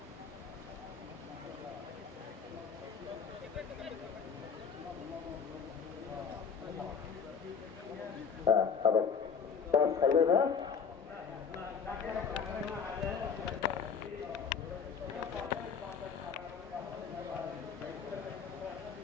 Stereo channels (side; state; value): right; quieter; 6.3 dB